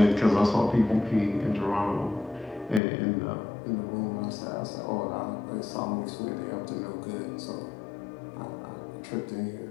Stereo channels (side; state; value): right; drops out; at 2.8 s